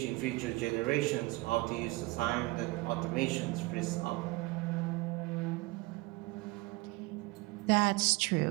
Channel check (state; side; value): quieter; left; 22.4 dB